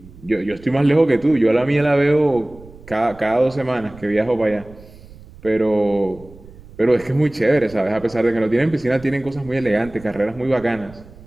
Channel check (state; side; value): noise; right; rumble, 21 dB below the sound